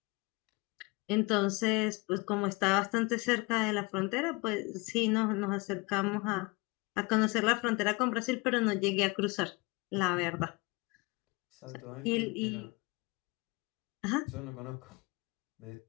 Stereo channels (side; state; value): right; quieter; 26.9 dB